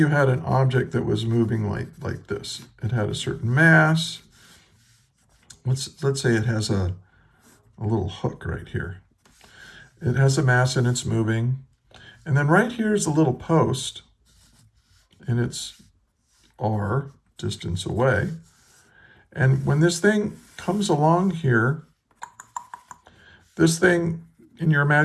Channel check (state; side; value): identical; both; correlation 1.00